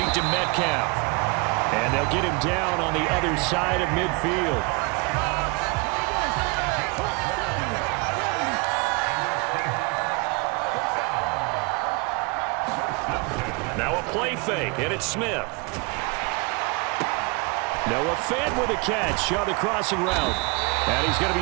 to Metcalf. And they'll get him down on the other side of midfield. Now a play fake, and it's Smith. Noah Fant with a catch on the crossing route. And he's going to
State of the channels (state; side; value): quieter; left; 29.8 dB